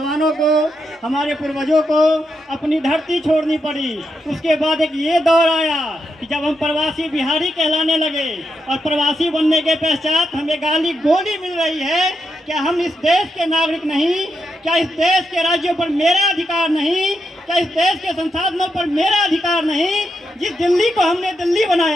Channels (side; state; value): both; normal; correlation 0.83